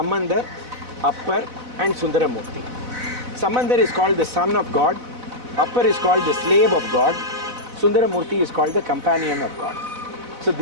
Appar and Sundaramurti. Samandar is called the son of God. Appar is called the slave of God. Sundaramurti is called the companion of God. So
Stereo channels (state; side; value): late; left; 4.0 ms